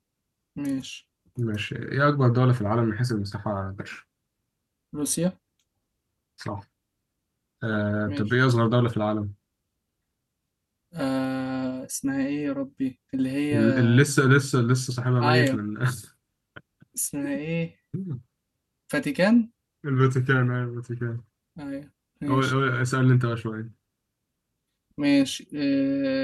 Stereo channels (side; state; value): both; identical; correlation 1.00